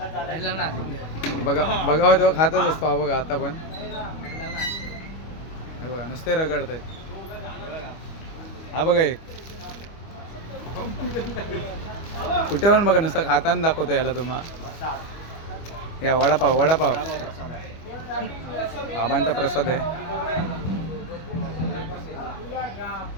बघावं तेव्हा खातच असतो. हा बघा, आता पण हे बघा नुसते रगडत आहेत. हा बघा, एक कुठे पण बघा नुसतं खाताना दाखवतो याला तुम्हाला. या वडापाव बाबांचा प्रसाद आहे.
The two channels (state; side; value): late; right; 25 ms